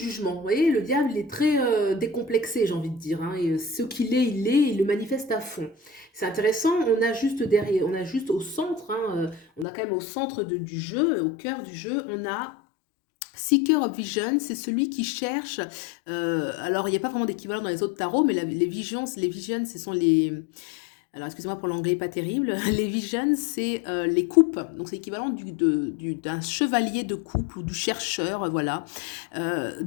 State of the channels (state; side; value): drops out; right; at 9.7 s